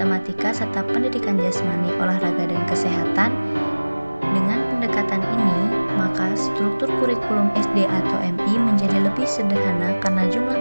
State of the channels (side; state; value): both; inverted; correlation -1.00